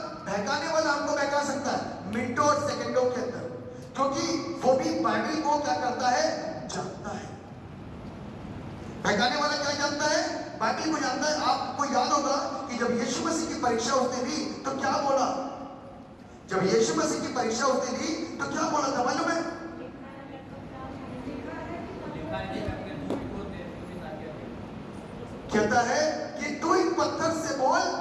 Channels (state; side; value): identical; both; correlation 1.00